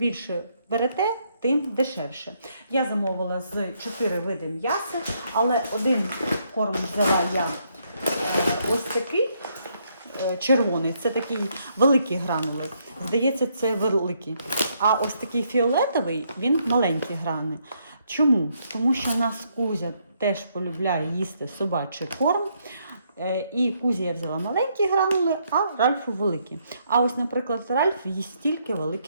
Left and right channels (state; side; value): inverted; both; correlation -0.73